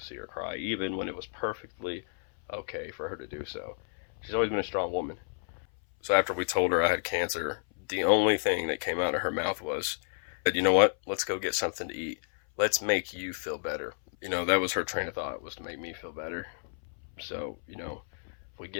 see her cry, even when it was perfectly okay for her to do so. She's always been a strong woman. So after we told her I had cancer, the only thing that came out of her mouth was, you know what, let's go get something to eat. Let's make you feel better. That was her train of thought, was to make me feel better. So, if we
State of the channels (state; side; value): silent; right; 57 dB below the other